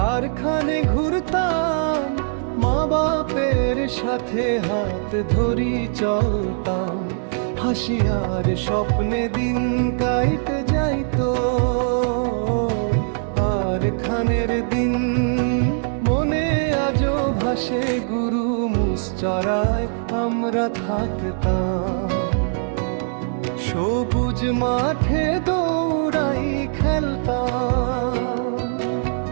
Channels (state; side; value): silent; left; digital silence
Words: খানে ঘুরতাম, মা বাপের সাথে হাত ধরি চলতাম, হাসি আর স্বপ্নে দিন কাইতে যাইতো। খানের দিন মনে আজও ভাসে, গুরু মুসচরায় আমরা থাকতাম। সবুজ মাঠে দৌড়াই খেলতাম,